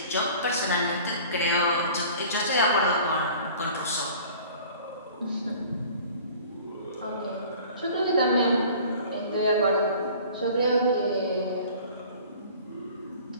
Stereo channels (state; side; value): inverted; both; correlation -0.46